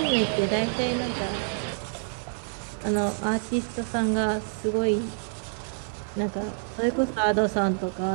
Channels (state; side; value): silent; left; 60 dB below the other